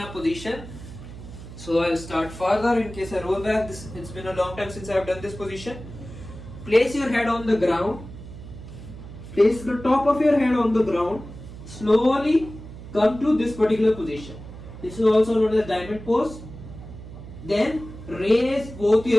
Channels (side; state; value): right; noise; hum, 14 dB below the sound